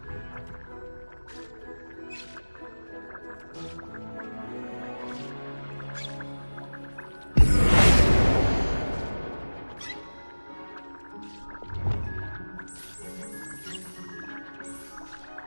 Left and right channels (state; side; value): inverted; both; correlation -1.00